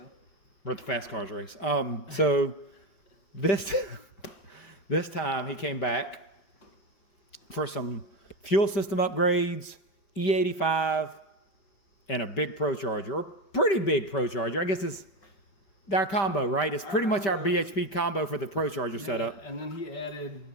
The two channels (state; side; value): late; right; 5.2 ms